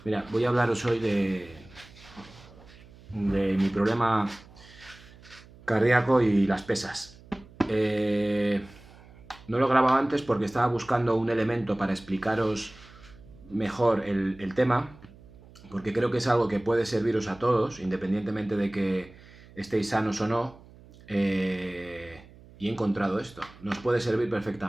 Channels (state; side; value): noise; right; hum, 22 dB below the sound